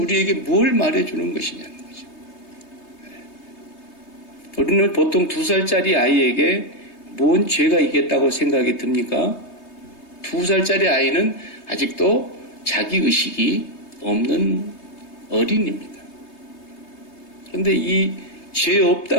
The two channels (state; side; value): late; right; 3.3 ms